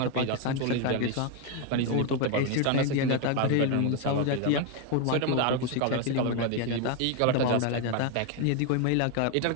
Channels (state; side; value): different; both; correlation 0.01